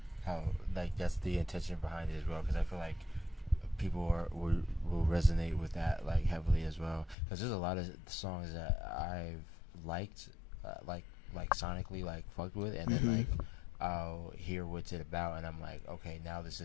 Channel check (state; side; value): drops out; right; at 7.2 s